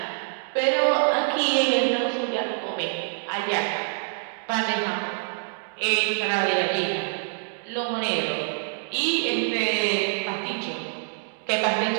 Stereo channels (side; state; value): left; silent; digital silence